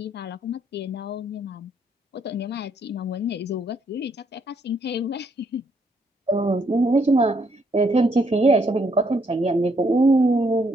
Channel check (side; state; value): both; normal; correlation 0.72